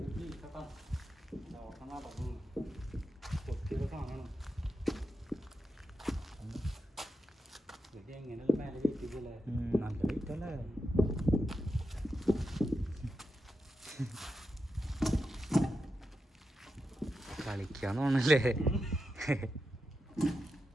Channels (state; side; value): normal; both; correlation 0.88